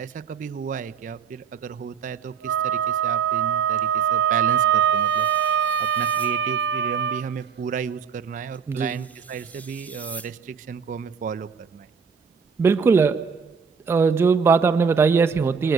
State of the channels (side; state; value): left; quieter; 6.3 dB